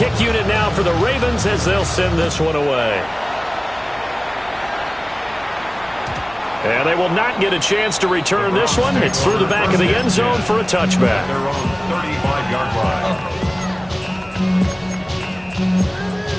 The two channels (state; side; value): noise; right; hum, 25 dB below the sound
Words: unit now for the Ravens as they'll send this one away. And they will not get a chance to return this one. It's through the back of the end zone for a touchback. Their own 35-yard line.